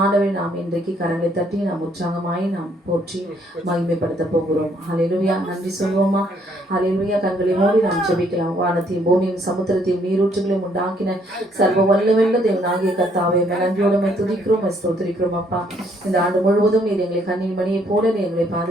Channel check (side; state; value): both; normal; correlation 0.67